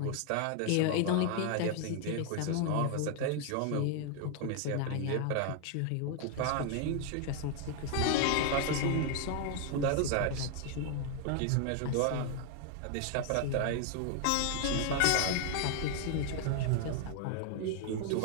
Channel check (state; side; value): different; both; correlation 0.00